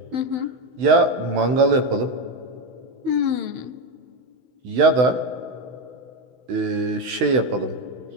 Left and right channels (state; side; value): late; left; 16 ms